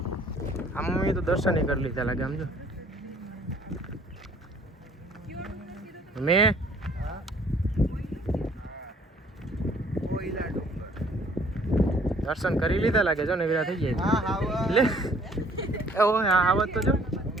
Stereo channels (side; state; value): both; normal; correlation 0.58